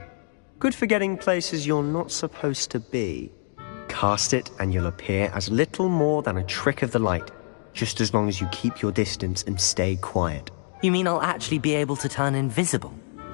Good for getting places you're not supposed to be. Cast it and you'll appear as little more than a trick of the light, just as long as you keep your distance and stay quiet. You mean I'll actually be able to turn invisible?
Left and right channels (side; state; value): right; silent; digital silence